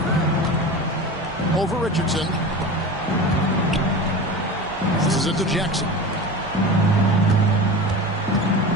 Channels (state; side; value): normal; both; correlation 0.30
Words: Over Richardson. This is it to Jackson.